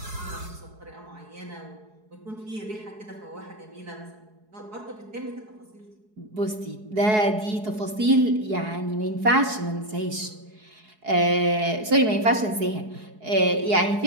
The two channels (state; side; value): late; left; 4.7 ms